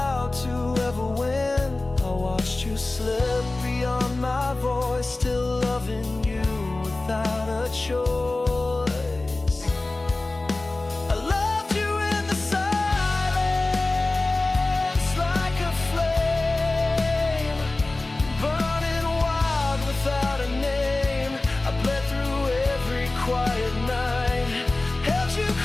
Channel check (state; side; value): quieter; right; 3.0 dB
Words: to ever win. I watched you slip beyond my voice, still loving you without a choice. I loved you in the silence, like a flame, burning wild without a name. I bled through every quiet night, held you